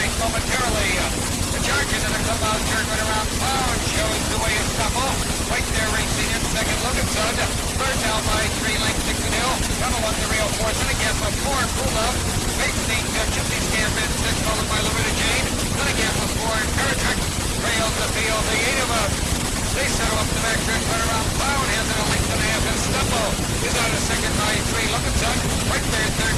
momentarily. The charge into the clubhouse turn right around Cloud shows the way of Scuffle. Right there racing in second, Loganson. Third now by 3 lengths, Dixon Hill. Down along the rail fourth, and a gap of 4, Cool Love. Facing Gypsy Scamp in 6, followed by Loretta Jane. Then a gap of 4, and Paratrick trails the field. The 8 of them. They settle up the back stretch right around Cloud. Has it a length and a half, and Scuffle is out of second by 3, Loganson. Right there, third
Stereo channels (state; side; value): identical; both; correlation 1.00